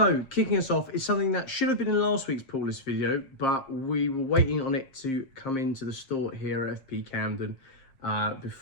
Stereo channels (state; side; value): late; right; 7.5 ms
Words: kicking us off is something that should have been in last week's pull list video, but we were waiting on it to come into the store here at FP Camden